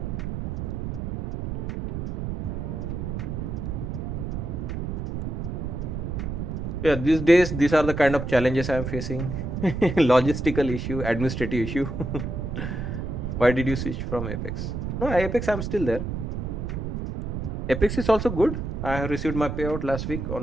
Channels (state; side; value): noise; right; rumble, 4 dB below the sound